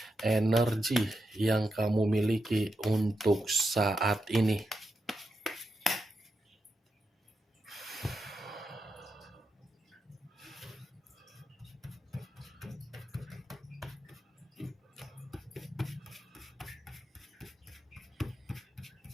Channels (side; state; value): both; normal; correlation 0.86